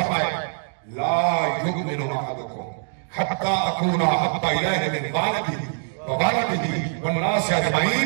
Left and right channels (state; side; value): silent; left; digital silence